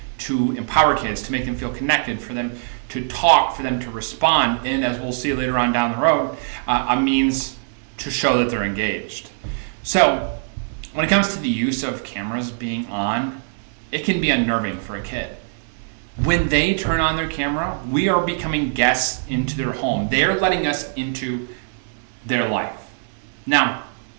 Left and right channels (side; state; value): left; silent; digital silence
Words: to empower kids, to make them feel connected, for them to talk, for them to respond, and as we'll see later on down the road, a means to show that they're engaged. So when it comes to the use of cameras being on, it can be unnerving for a kid. When they turn on their camera, we are becoming guests into their home. They're letting us into their life. Now,